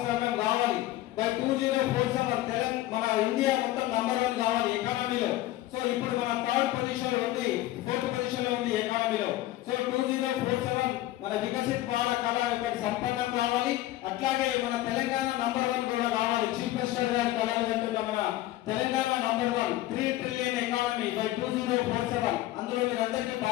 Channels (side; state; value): right; quieter; 15.6 dB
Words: కావాలి. బై 2047 మన ఇండియా మొత్తం నంబర్ 1 కావాలి ఎకానమీలో. సో ఇప్పుడు మన 3rd పొజిషన్ లో ఉంది, 4th పొజిషన్ లో ఉంది ఎకానమీలో. సో 2047 మన వికసిత్ భారత్ కళ ఒకటి సంపన్నం కావాలి. అట్లాగే మన తెలంగాణ నంబర్ 1 కూడా కావాలి. చీఫ్ మినిస్టర్ గారి కళలు అంటున్న మన Telangana number 1 3 trillion economy by 2047. అందులో మీరందరికీ